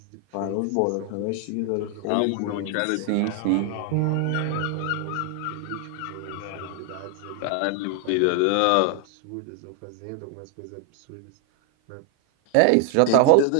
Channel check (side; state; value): both; different; correlation 0.00